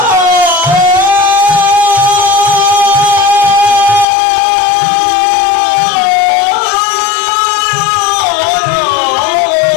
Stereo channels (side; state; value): right; drops out; at 4.0 s